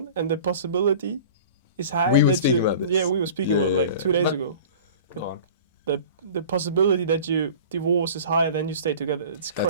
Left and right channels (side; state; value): both; inverted; correlation -0.41